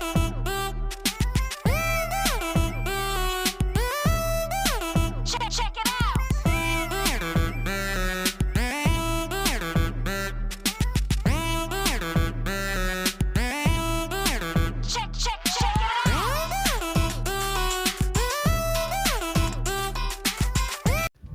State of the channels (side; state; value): both; identical; correlation 1.00